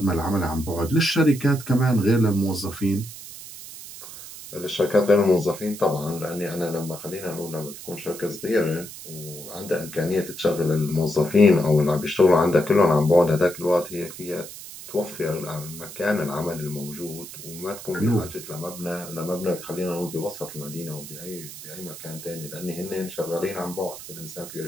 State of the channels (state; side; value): noise; right; hiss, 13 dB below the sound